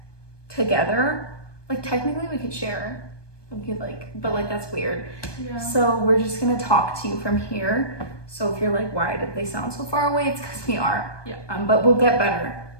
together. Technically we could share. We could but that's weird. Yeah. So we're just gonna talk to you from here. So if you're like, why did they sound so far away? It's because we are. Yeah. But we'll get better.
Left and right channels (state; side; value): late; right; 1.2 ms